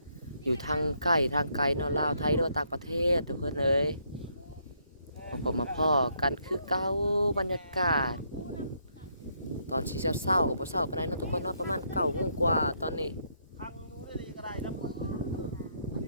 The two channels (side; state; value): both; inverted; correlation -0.74